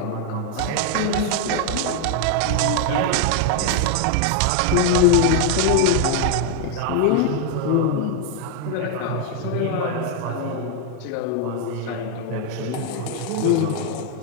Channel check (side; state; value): both; different; correlation 0.01